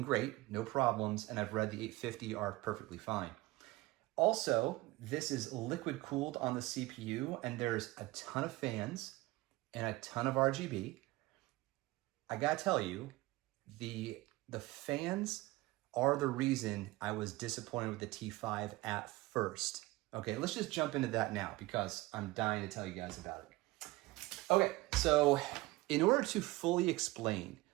great, no problems. And I've read the 850 are perfectly fine. Also, this is liquid cooled on the CPU and there's a ton of fans and a ton of RGB. I gotta tell you, the fans are the reason I was disappointed with the T5 at first. Okay, let's just jump into that now because I'm dying to tell you guys about it. Okay, so in order to fully explain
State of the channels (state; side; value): quieter; left; 20.0 dB